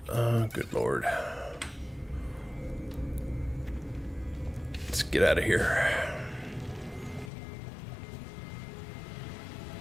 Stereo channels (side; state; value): right; drops out; at 7.3 s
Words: Oh, good lord. Let's get out of here.